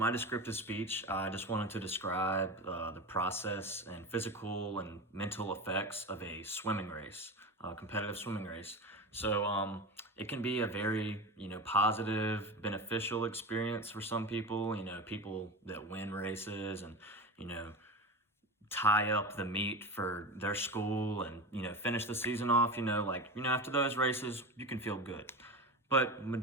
descriptive speech, I just wanted to describe the process and physical and mental effects of a swimming race, a competitive swimming race. It can be a very, positive, beneficial experience for some people, people that win races and, you know, tie up the meet for their school and, finish the season off, after those races, you can feel good. But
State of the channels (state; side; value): normal; both; correlation 0.25